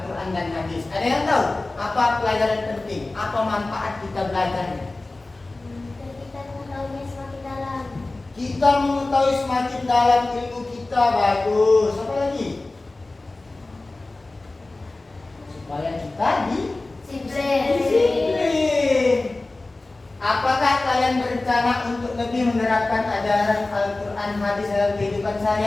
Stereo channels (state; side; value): quieter; right; 3.1 dB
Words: dan hadis? Ada yang tahu apa pelajaran penting? Apa manfaat kita belajarnya? Kita mengetahuinya semakin dalam. Kita mengetahui semakin dalam ilmu kita. Bagus. Apa lagi? Supaya kita disiplin. Apakah kalian berencana untuk lebih menerapkan ajaran Al-Quran hadis dalam kehidupan